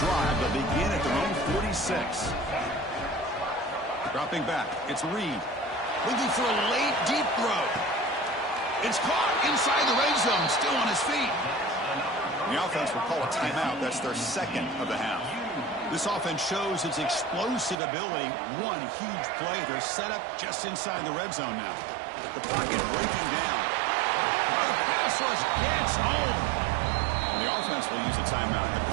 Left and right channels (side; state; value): left; drops out; at 17.8 s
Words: drive. They'll begin at their own 46. Dropping back. It's Reed. Looking for a late, deep throw. It's caught inside the red zone. Still on his feet. The offense will call a timeout. That's their second of the half. This offense shows its explosive ability. One huge play. They're set up just inside the red zone now. The pocket breaking down. The pass rush gets home. And the offense will use a timeout. Have a